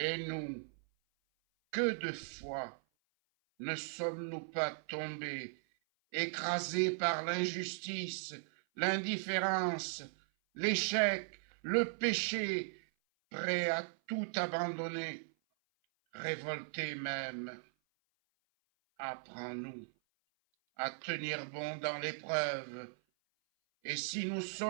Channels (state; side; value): silent; left; 52 dB below the other